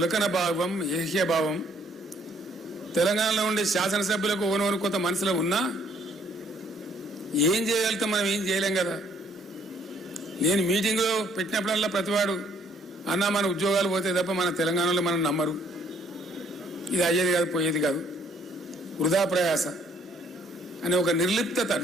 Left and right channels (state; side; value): normal; both; correlation 0.64